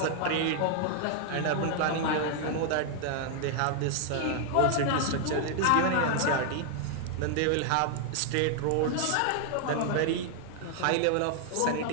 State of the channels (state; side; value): different; both; correlation 0.00